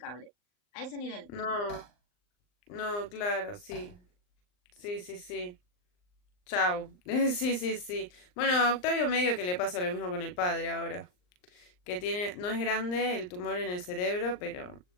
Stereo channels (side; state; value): right; late; 39 ms